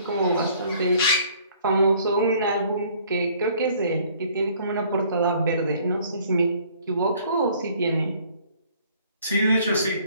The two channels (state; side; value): inverted; both; correlation -0.58